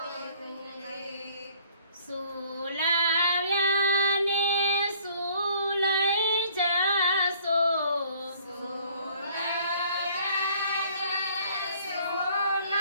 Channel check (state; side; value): inverted; both; correlation -0.56